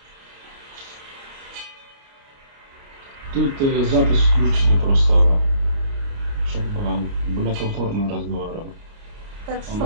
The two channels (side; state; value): left; late; 29 ms